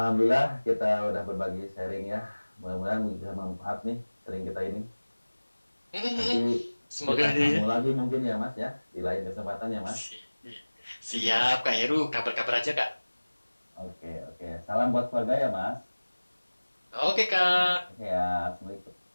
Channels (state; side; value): inverted; both; correlation -1.00